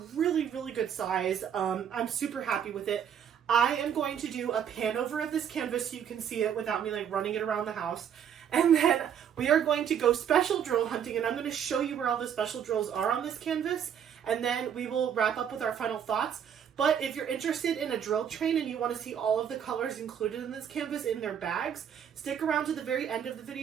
really, really good size. I'm super happy with it. I am going to do a pan over of this canvas so you can see it without me like running it around the house. And then we are going to go special drill hunting, and I'm going to show you where all the special drills are on this canvas. And then we will wrap up with our final thoughts. But if you're interested in a drill train and you want to see all of the colors included in this canvas in their bags, stick around to the very end of the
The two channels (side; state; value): left; quieter; 8.6 dB